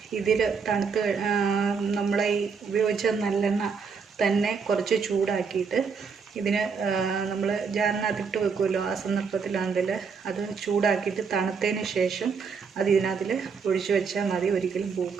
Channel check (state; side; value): quieter; left; 5.6 dB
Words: ഇതിൽ തണുത്ത് നമ്മളെ ഈ ഉപയോഗിച്ച നല്ലെണ്ണ തന്നെ കുറച്ച് ചൂടാക്കിയിട്ട് ഇതിന് നമ്മൾ ജാറിനകത്തിട്ട് വെക്കുമല്ലോ, ആ സന്ദർഭത്തിലാണെങ്കിൽ അത് ചൂടാക്കിയിട്ട് തണുത്തതിന് ശേഷം അത് ഇതിനകത്തിൽ ഒഴിച്ചു വെച്ചാൽ മതി, ഒരിക്കലും